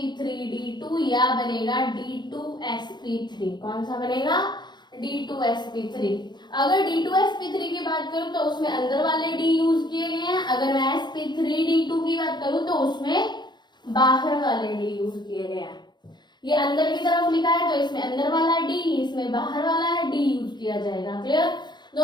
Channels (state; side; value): late; right; 0.21 ms